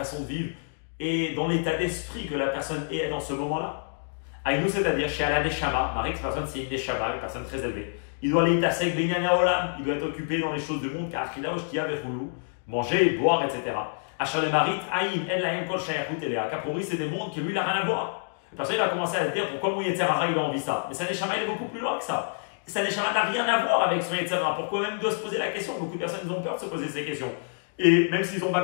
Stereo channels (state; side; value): silent; right; digital silence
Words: de vivre, et dans l'état d'esprit que la personne est dans ce moment-là. Aïnou, c'est-à-dire chez Allah Neshama, Marie, cette personne c'est une Neshama, une personne très élevée. Il doit aller tasek Benyan Olam, il doit être occupé dans les choses du monde, car Achila Oshtia Vechulu, manger, boire, etc. Achar le Marit, Aïn, En Lahem Kol Shayachut Elea. Capori, c'est des mondes qui lui, il n'a rien à voir. La personne, il va commencer à se dire pourquoi mon Yetzerara, il a envie ça. Mais sa Neshama, il est beaucoup plus loin que ça. Sa Neshama n'a rien à voir avec son Yetzerara. Pourquoi même il doit se poser la question? Beaucoup de personnes, ils ont peur de se poser ces questions. Et même s'ils n'ont pas